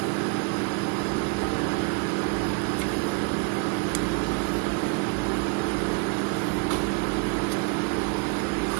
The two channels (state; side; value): quieter; left; 32.6 dB